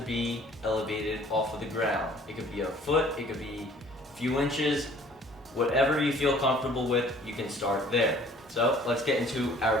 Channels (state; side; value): normal; both; correlation 0.54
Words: elevated off of the ground. It could be a foot, it could be a few inches, whatever you feel comfortable with, you can start there. So let's get into